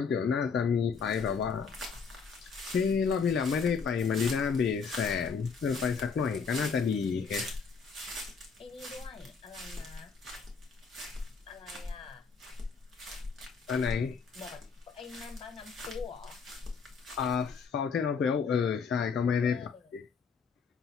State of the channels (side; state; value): right; quieter; 5.6 dB